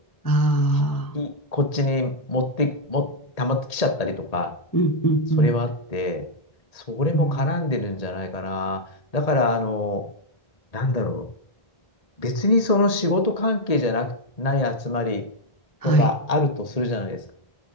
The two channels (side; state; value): right; late; 1.8 ms